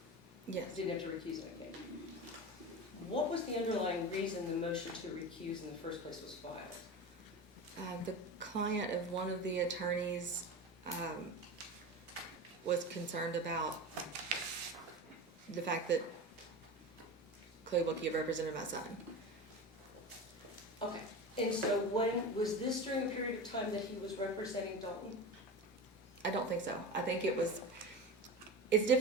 Yes. You didn't have to recuse in a case. What was the underlying reason the motion to recuse in the first place was filed? The client of one of the attorneys was concerned about the fact that Clay Wilkie had represented my son. Okay, and so was this during a period of time that he was representing Dalton? I don't think so. I think it's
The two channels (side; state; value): both; normal; correlation 0.28